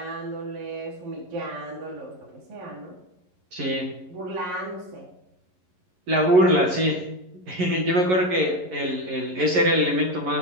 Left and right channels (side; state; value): left; late; 11 ms